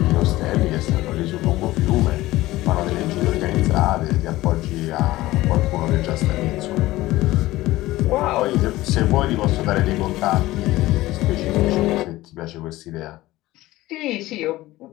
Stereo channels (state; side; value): quieter; right; 17.4 dB